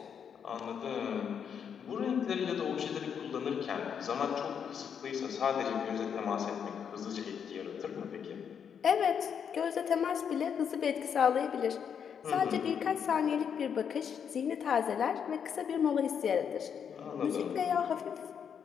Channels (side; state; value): right; quieter; 7.6 dB